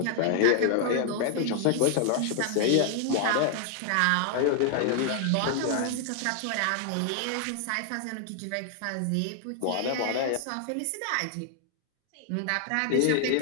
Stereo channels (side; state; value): both; different; correlation 0.00